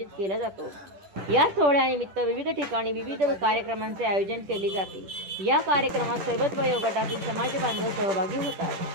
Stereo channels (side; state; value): left; late; 10 ms